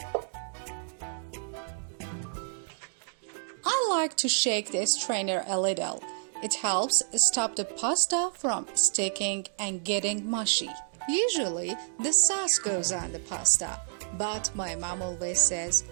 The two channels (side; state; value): left; silent; digital silence